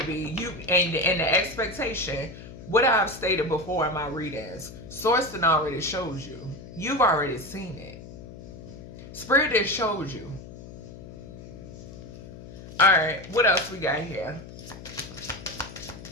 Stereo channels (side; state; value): left; noise; hum, 15 dB below the sound